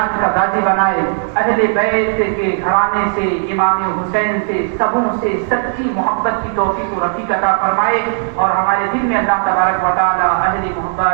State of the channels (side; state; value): left; silent; digital silence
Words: کا غازی بنائے، اہل بیت کے گھرانے سے، امام حسین سے، سبوں سے سچی محبت کی توفیق و رفیق عطا فرمائے، اور ہمارے دل میں اللہ تبارک و تعالیٰ